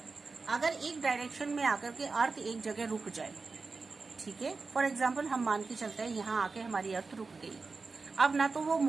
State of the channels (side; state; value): left; quieter; 4.2 dB